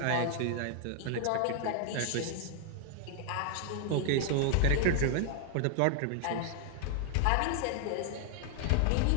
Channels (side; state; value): both; different; correlation 0.00